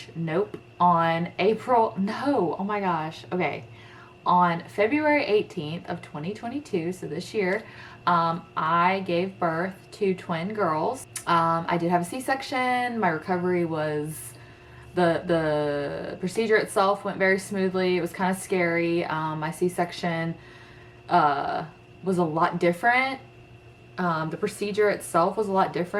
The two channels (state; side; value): identical; both; correlation 1.00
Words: February 18th of 2022, so this year, I gave birth to twin girls. I did have a C-section. My recovery was, the procedure itself went very smoothly. It was kind of scary. My C-section was a lot different. The procedure itself was a lot